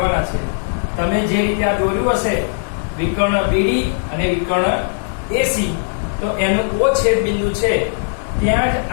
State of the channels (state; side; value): silent; right; digital silence